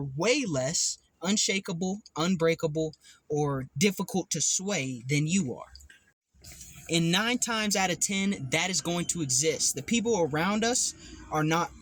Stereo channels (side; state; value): both; identical; correlation 1.00